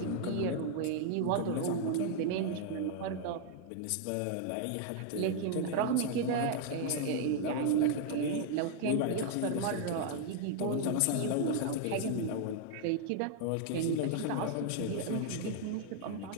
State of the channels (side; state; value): both; different; correlation 0.00